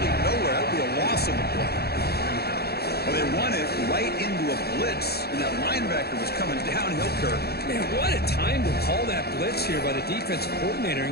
nowhere. That'll be a loss on the play. Well, they run it right into a blitz, and that linebacker was coming downhill, Kirk. Man, what a time to call that blitz here by the defensive coordinator.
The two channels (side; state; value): right; late; 0.46 ms